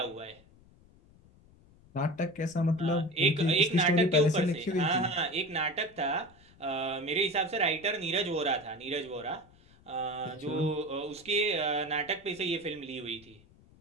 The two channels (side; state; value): left; noise; rumble, 27 dB below the sound